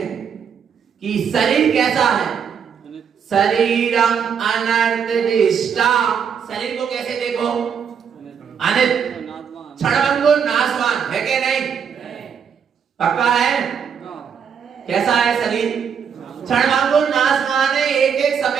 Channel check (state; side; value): quieter; left; 7.3 dB